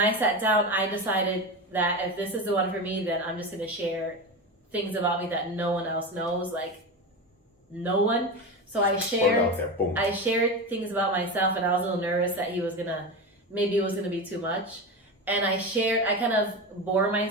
sat down, I decided that if this is the one for me, then I'm just going to share things about me that no one else knows, no one. So I shared things about myself, and I was a little nervous that maybe it was going to be too much. And I kind of bore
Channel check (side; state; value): both; normal; correlation 0.22